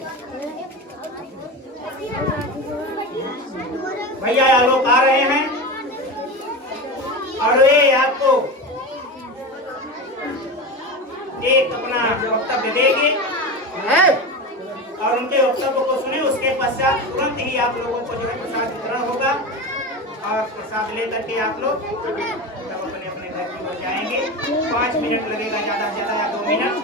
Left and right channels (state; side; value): normal; both; correlation 0.24